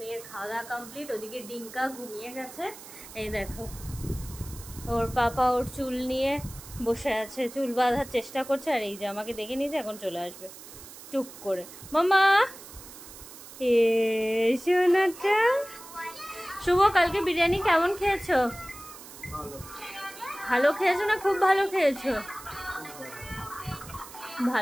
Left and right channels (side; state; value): right; noise; hiss, 16 dB below the sound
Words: খাওয়া দাওয়া কমপ্লিট, ওদিকে ডিঙ্কা ঘুমিয়ে গেছে। এই দেখো, ওর পাপা ওর চুল নিয়ে বসে আছে, চুল বাঁধার চেষ্টা করছে। আর এই যে আমাকে দেখে নিয়েছে, এখন চলে আসবে চুপ করে। মামা সোনাটা। শুভ, কালকে বিরিয়ানি কেমন খেয়েছো? ভালো খেয়েছো না খুব ভালো খেয়েছো?